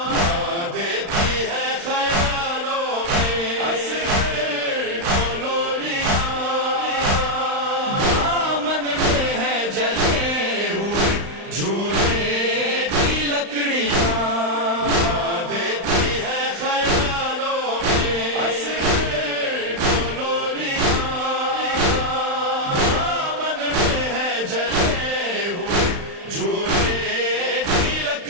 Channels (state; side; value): late; left; 35 ms